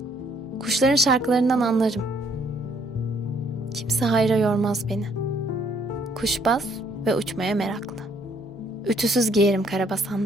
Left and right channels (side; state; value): both; normal; correlation 0.66